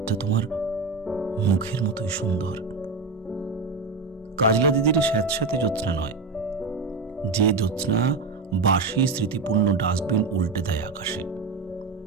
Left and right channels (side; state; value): left; quieter; 4.2 dB